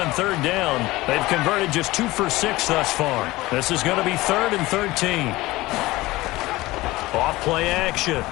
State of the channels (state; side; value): quieter; right; 19.3 dB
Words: third down. They've converted just 2 for 6 thus far. This is going to be 3rd and 13. Off play action.